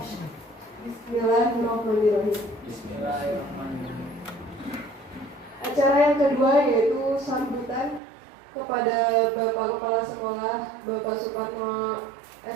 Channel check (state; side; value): drops out; left; at 8.0 s